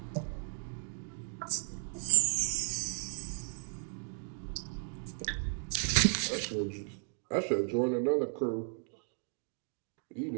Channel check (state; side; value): silent; left; 54 dB below the other